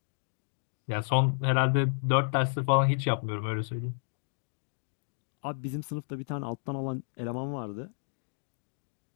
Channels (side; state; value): right; silent; digital silence